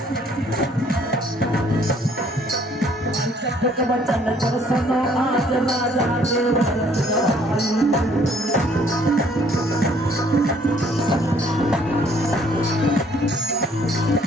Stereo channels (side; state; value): both; normal; correlation 0.61